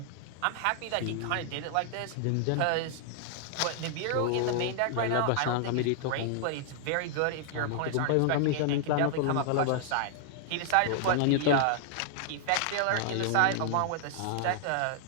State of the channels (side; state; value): both; different; correlation -0.01